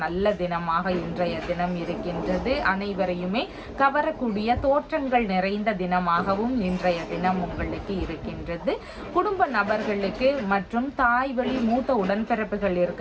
நல்ல தினமாக இன்றைய தினம் இருக்கின்றது. அனைவரையுமே கவரக்கூடிய தோற்றங்கள் நிறைந்த தினமாகவும் இன்றைய தினம் உங்களுக்கு இருக்கின்றது. குடும்ப நபர்களுக்கு மற்றும் தாய் வழி மூத்த உடன்பிறப்புகள்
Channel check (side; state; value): both; identical; correlation 1.00